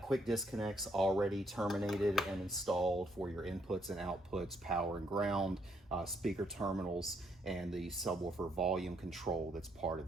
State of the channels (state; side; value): normal; both; correlation 0.72